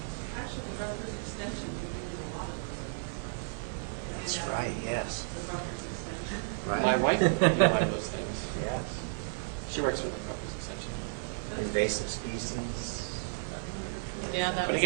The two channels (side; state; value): left; silent; 56 dB below the other